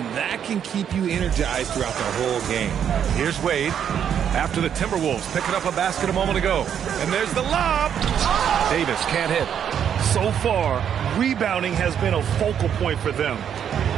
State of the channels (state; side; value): quieter; left; 8.7 dB